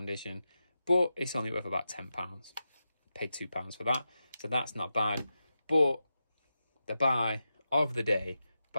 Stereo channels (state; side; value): inverted; both; correlation -0.90